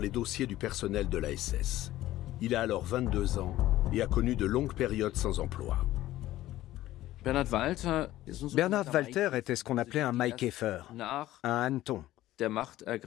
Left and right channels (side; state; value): right; quieter; 15.1 dB